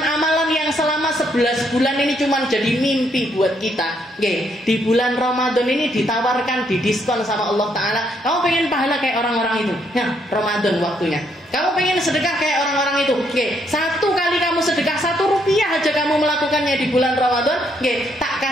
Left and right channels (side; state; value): both; normal; correlation 0.73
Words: yang selama 11 bulan ini cuma jadi mimpi buat kita. Di bulan Ramadan ini ditawarkan, didiskon sama Allah Ta'ala. Kamu pengen pahala kayak orang-orang itu? Ya, Ramadan waktunya. Kamu pengen sedekah kayak orang-orang itu? Satu kali kamu sedekah 1 rupiah aja kamu melakukannya di bulan Ramadan, tak